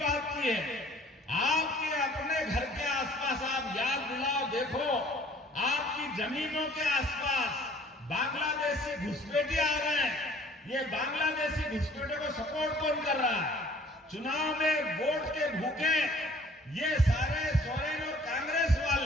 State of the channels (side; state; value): both; normal; correlation 0.54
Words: की है, आपके अपने घर के आसपास आप याद दिलाओ, देखो आपकी जमीनों के आसपास बांग्लादेशी घुसपैठिए आ रहे हैं। ये बांग्लादेशी घुसपैठियों को सपोर्ट कौन कर रहा है? चुनाव में वोट के भूखे ये सारे सोरेन और कांग्रेस